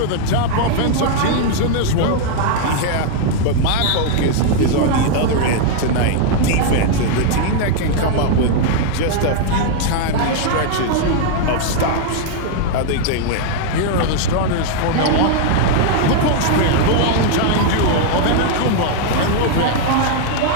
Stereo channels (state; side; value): different; both; correlation 0.00